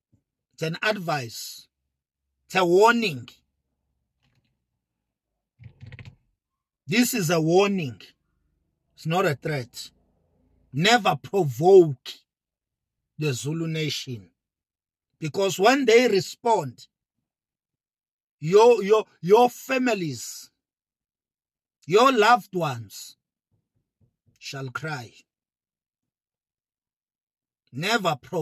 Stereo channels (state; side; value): identical; both; correlation 1.00